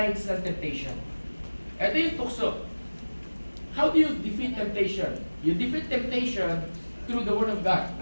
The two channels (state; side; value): inverted; both; correlation -1.00